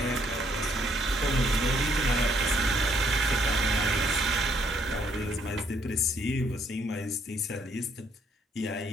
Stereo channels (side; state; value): both; normal; correlation 0.68